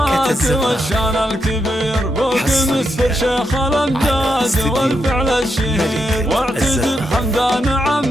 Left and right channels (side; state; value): both; normal; correlation 0.83